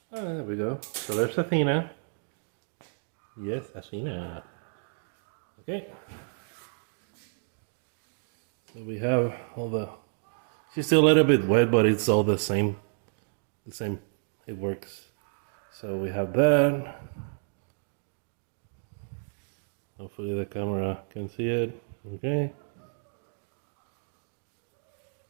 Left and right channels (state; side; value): silent; left; digital silence